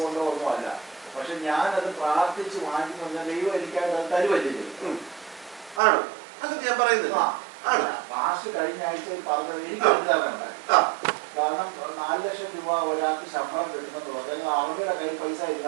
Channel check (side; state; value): left; drops out; at 5.8 s